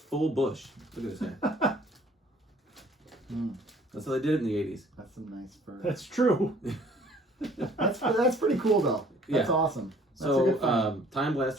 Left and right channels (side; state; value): both; normal; correlation 0.55